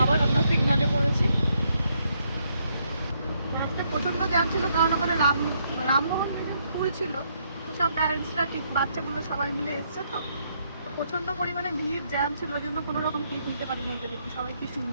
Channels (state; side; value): inverted; both; correlation -0.74